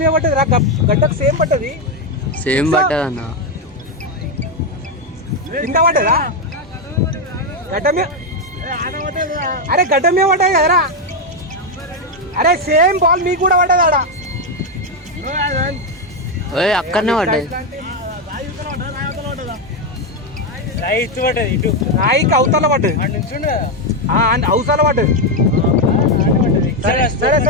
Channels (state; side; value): normal; both; correlation 0.06